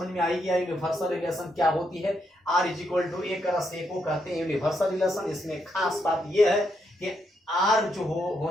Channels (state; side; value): normal; both; correlation 0.79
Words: में आई गया यूनिवर्सल रिलेशन क्या होती है। R = A + A को कहते हैं यूनिवर्सल रिलेशन। इसमें खास बात यह है कि R जो